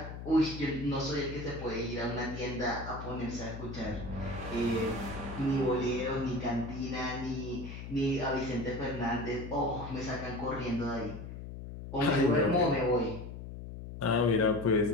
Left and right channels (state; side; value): noise; left; hum, 10 dB below the sound